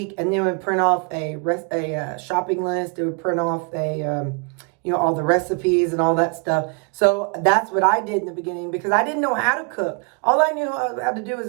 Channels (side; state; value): left; quieter; 35.3 dB